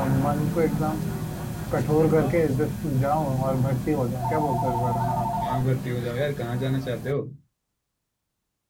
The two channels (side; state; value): both; identical; correlation 1.00